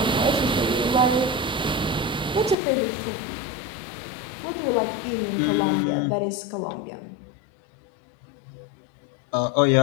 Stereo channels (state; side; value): drops out; right; at 2.6 s